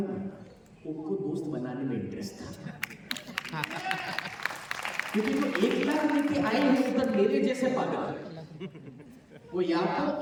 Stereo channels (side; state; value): both; identical; correlation 1.00